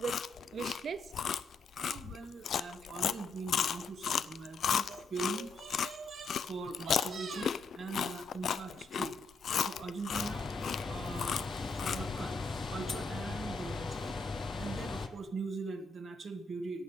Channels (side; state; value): right; quieter; 3.6 dB